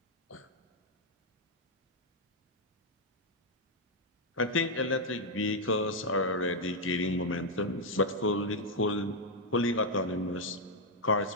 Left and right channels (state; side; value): normal; both; correlation -0.01